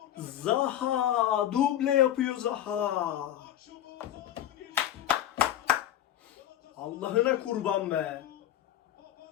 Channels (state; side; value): quieter; right; 12.0 dB